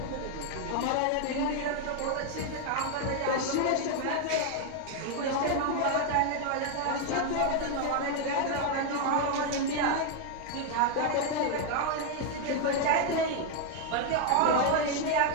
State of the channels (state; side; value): different; both; correlation 0.01